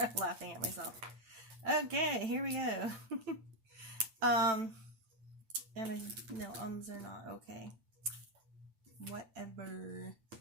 laughing at myself. Okay, here we go. And I know ums are not okay. Whatever.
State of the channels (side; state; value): left; late; 9.0 ms